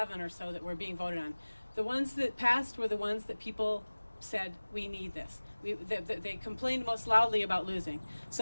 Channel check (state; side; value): inverted; both; correlation -1.00